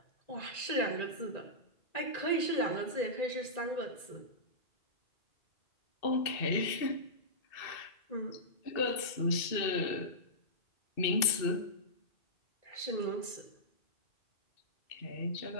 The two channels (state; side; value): late; right; 2.6 ms